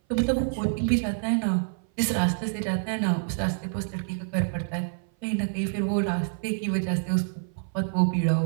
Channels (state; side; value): silent; left; 57 dB below the other